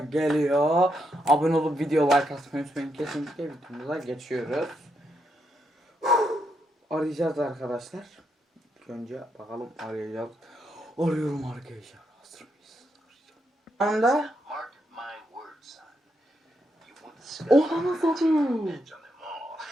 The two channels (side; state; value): both; normal; correlation 0.80